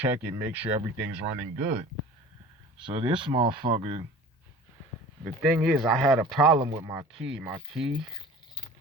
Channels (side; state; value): both; normal; correlation 0.42